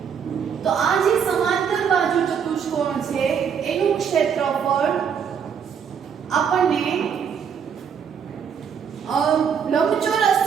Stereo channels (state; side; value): quieter; left; 7.3 dB